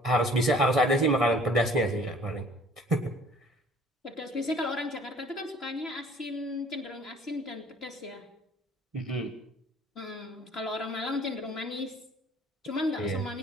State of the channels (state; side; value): normal; both; correlation 0.53